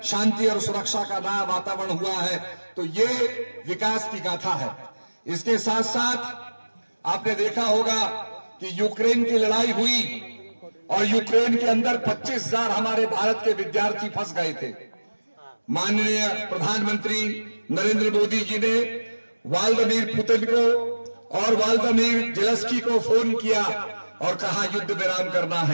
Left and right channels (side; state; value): both; inverted; correlation -1.00